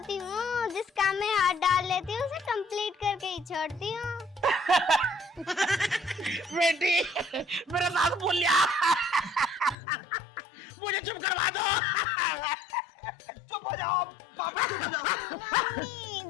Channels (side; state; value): right; drops out; at 9.8 s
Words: हूँ। जिस काम में हाथ डाल लेती हूँ उसे कंप्लीट करके ही छोड़ती हूँ। बेटी, मेरा साथ बोल लिया। मुझे चुप करवा दो। चुप हो जाओ पापा, चुप हो जाओ।